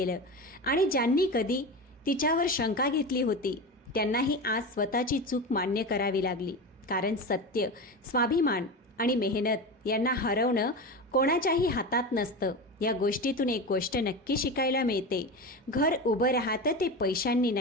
आणि ज्यांनी कधी तिच्यावर शंका घेतली होती त्यांनाही आज स्वतःची चूक मान्य करावी लागली. कारण सत्य, स्वाभिमान आणि मेहनत यांना हरवणं कोणाच्याही हातात नसतं. या गोष्टीतून एक गोष्ट नक्की शिकायला मिळते, घर उभं राहतं ते पैशांनी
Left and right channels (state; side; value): normal; both; correlation 0.24